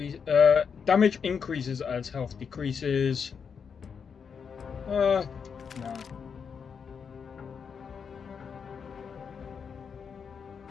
Damage increases as health decreases. No.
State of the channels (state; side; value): quieter; right; 6.4 dB